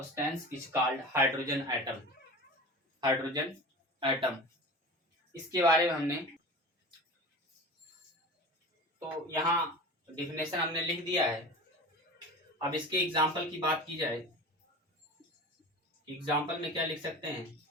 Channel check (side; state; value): both; normal; correlation 0.34